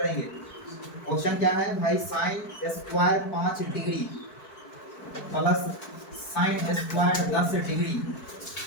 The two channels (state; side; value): late; right; 4.6 ms